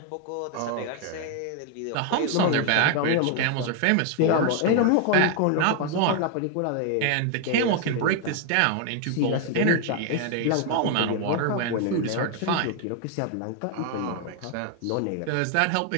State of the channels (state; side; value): different; both; correlation 0.01